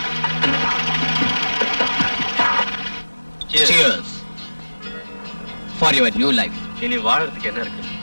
Cheers for your new life. இனி வாழறதுக்கு என்ன இருக்கு?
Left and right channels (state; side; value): inverted; both; correlation -1.00